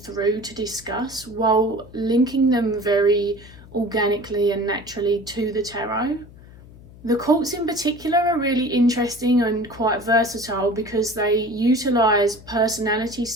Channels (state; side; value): noise; left; hum, 20 dB below the sound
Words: to discuss, while linking them very organically and naturally to the tarot. The cults in particular are really interesting and quite versatile because they utilise personality